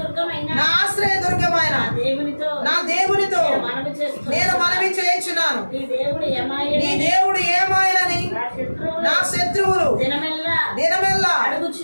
నా ఆశ్రయ దుర్గమైన నా దేవునితో నేను మనవి చేయుచున్నాను. నీ దేవుడు ఏమాయనని నా శత్రువులు దినమెల్లా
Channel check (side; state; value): both; inverted; correlation -1.00